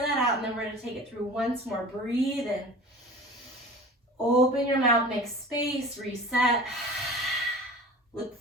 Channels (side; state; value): both; normal; correlation 0.39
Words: out, and then we're gonna take it through once more. Breathe in. Open your mouth, make space, reset. Look